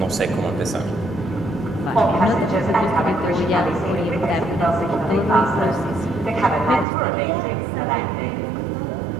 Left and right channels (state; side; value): drops out; left; at 6.9 s